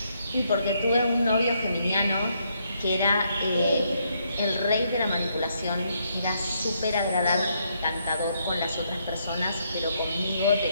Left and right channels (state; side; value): inverted; both; correlation -0.75